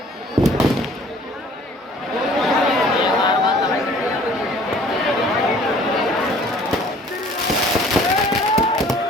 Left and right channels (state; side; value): normal; both; correlation 0.53